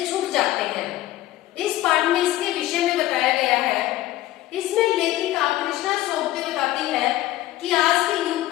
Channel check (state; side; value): quieter; right; 15.4 dB